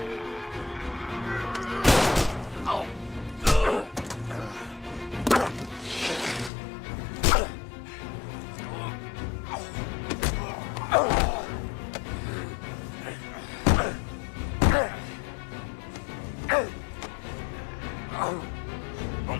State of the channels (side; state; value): right; drops out; at 6.5 s